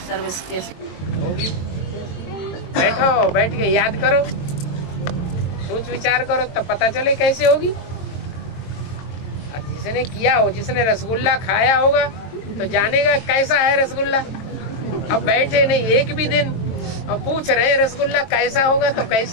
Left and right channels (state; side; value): late; right; 22 ms